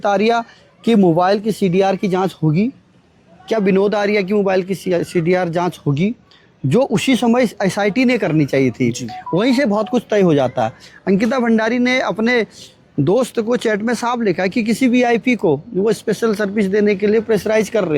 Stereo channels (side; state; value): both; identical; correlation 1.00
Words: आर्या कि मोबाइल की सीडीआर की जांच होगी? क्या विनोद आर्या की मोबाइल की सीडीआर जांच होगी, जो उसी समय एसआईटी ने करनी चाहिए थी? वहीं से बहुत कुछ तय हो जाता है। अंकिता भंडारी ने अपने दोस्त को चैट में साफ लिखा कि किसी वीआईपी को वो स्पेशल सर्विस देने के लिए प्रेशराइज कर